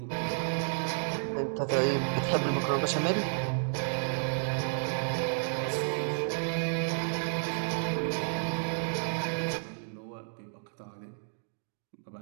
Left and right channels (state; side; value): silent; left; digital silence